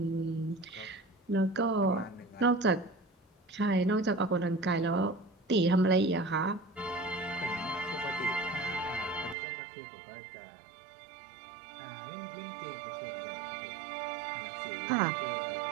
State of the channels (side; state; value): left; drops out; at 9.3 s